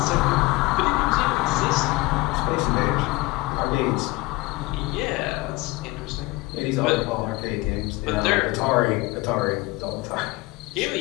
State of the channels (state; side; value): quieter; right; 21.6 dB